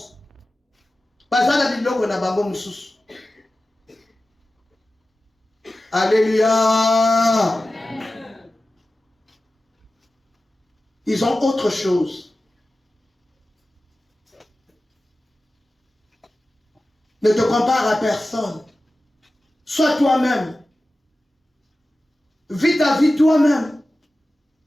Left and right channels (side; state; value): both; normal; correlation 0.95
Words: Alléluia. Ils ont autre chose. Ne te compare à personne. Sois toi-même. Vis ta vie toi-même.